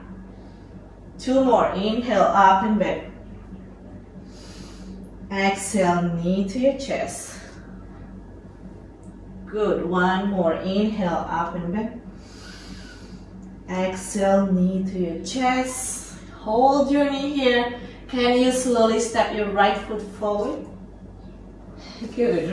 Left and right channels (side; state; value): both; identical; correlation 1.00